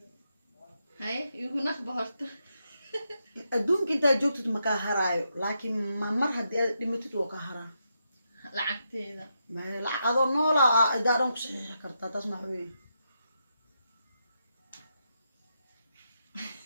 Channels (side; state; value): both; inverted; correlation -0.83